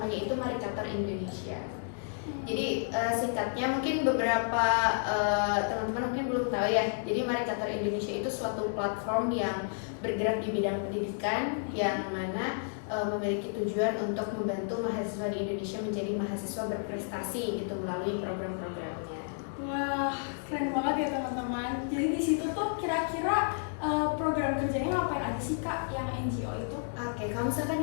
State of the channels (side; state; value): right; silent; digital silence